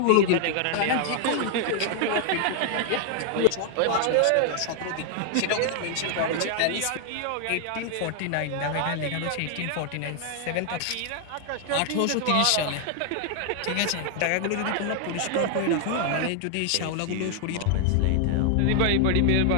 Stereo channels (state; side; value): different; both; correlation 0.00